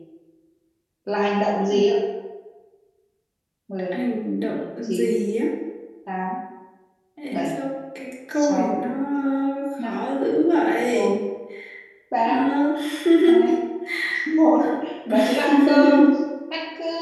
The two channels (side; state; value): both; identical; correlation 1.00